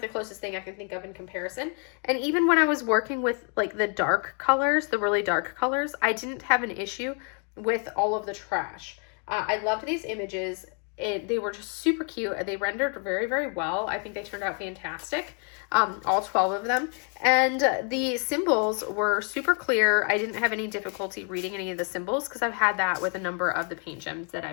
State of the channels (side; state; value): right; quieter; 39.9 dB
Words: the closest thing I can think of in comparison. And even when I was working with like the dark colors, the really dark colors, I didn't have an issue with all of the trash. I loved these images. They were just super cute. They rendered very, very well. I think they turned out fantastic. All 12 of them. And the symbols were super clear. I didn't have any difficulty reading any of the symbols because I've had that with a number of the paint gems that